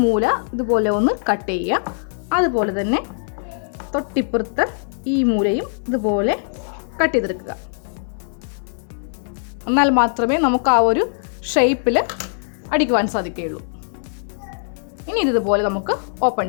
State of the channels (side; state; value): right; silent; 63 dB below the other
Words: മൂല ഇതുപോലെ ഒന്ന് കട്ട് ചെയ്യുക. അതുപോലെ തന്നെ തൊട്ടിപ്പുറത്ത് ഈ മൂലയും ഇതുപോലെ കട്ട് ചെയ്തെടുക്കുക. എന്നാൽ മാത്രമേ നമുക്ക് ആ ഒരു ഷേപ്പിൽ അടിക്കുവാൻ സാധിക്കുകയുള്ളൂ. ഇനി ഇതുപോലെ നമുക്ക് ഓപ്പൺ